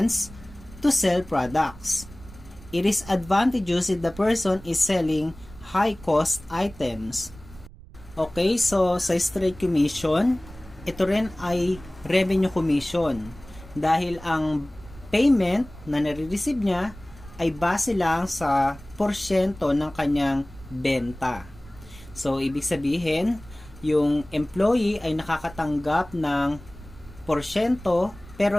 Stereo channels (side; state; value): right; noise; rumble, 19 dB below the sound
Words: to sell products. It is advantageous if the person is selling high-cost items. Okay, so sa straight commission, ito rin ay revenue commission dahil ang payment na nare-receive niya ay base lang sa porsyento ng kanyang benta. So, ibig sabihin, yung employee ay nakakatanggap ng porsyento